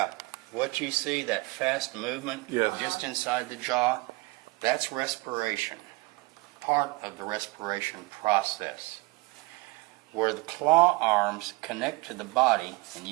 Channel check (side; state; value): left; quieter; 24.1 dB